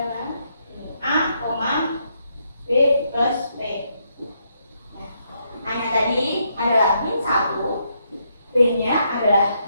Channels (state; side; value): inverted; both; correlation -0.77